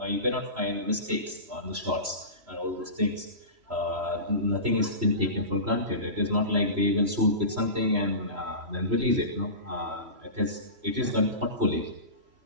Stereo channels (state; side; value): late; left; 3.0 ms